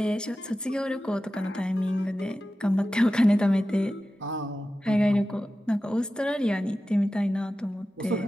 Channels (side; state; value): both; normal; correlation 0.94